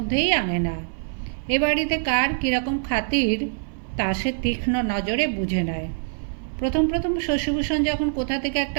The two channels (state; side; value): silent; left; 59 dB below the other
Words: আনে না। এ বাড়িতে কার কীরকম খাতির তা সে তীক্ষ্ণ নজরে বুঝে নেয়। প্রথম প্রথম শশীভূষণ যখন কোথা থেকে